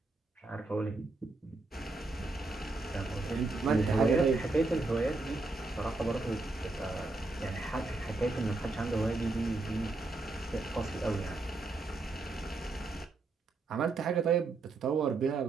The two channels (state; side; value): quieter; left; 3.4 dB